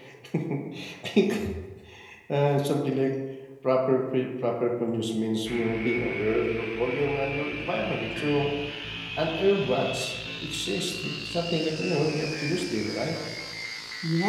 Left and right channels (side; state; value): both; identical; correlation 1.00